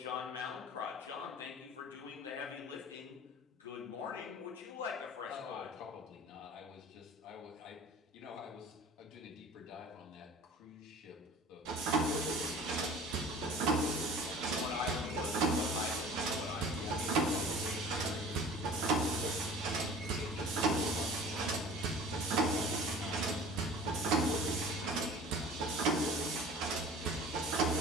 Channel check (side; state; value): both; normal; correlation 0.43